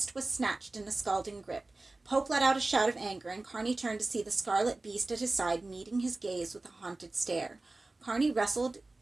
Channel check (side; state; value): left; quieter; 3.1 dB